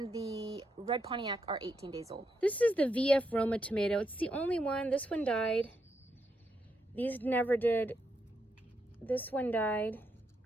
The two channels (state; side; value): normal; both; correlation 0.81